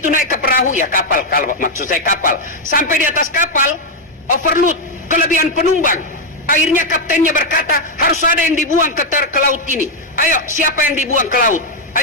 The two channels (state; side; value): normal; both; correlation 0.01